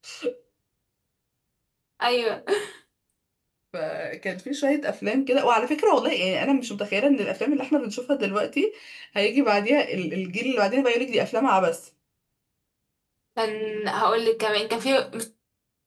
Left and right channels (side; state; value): both; identical; correlation 1.00